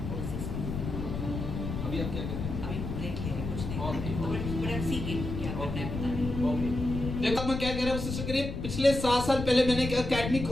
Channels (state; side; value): noise; left; rumble, 5 dB below the sound